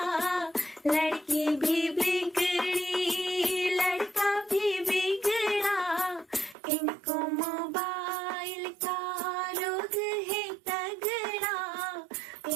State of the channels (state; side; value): drops out; left; at 6.6 s